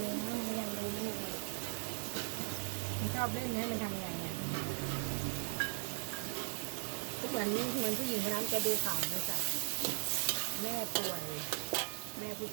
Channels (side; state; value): left; silent; digital silence